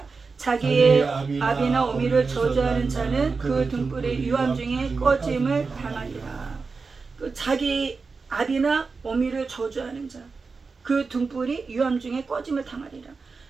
자기의 아비나 어미를 저주하는 자는 그 등불의 유암 중에 꺼짐을 당하리라. 자기 아비나 어미를 저주하는 자, 그 등불이 유암 중에 꺼짐을 당하리라.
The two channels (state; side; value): quieter; left; 4.5 dB